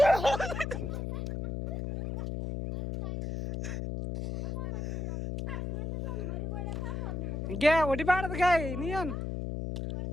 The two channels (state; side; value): noise; left; hum, 3 dB below the sound